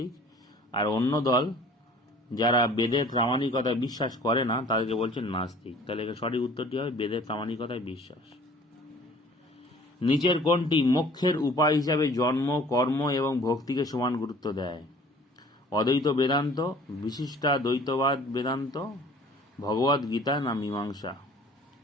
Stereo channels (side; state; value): both; normal; correlation 0.50